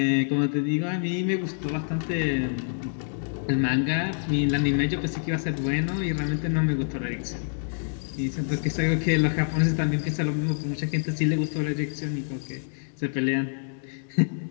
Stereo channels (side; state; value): right; silent; digital silence